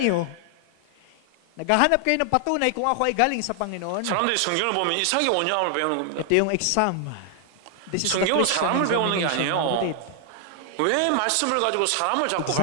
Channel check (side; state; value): both; different; correlation 0.00